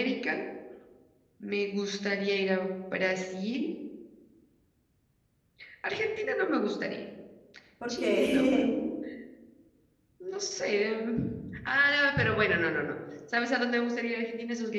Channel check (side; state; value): both; identical; correlation 1.00